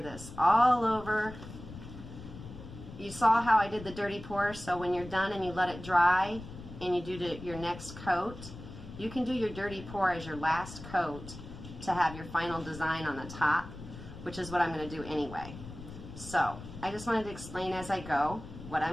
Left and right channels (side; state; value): left; noise; rumble, 13 dB below the sound